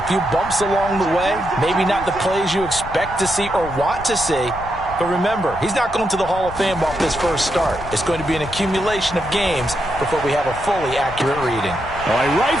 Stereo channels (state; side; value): noise; left; rumble, 13 dB below the sound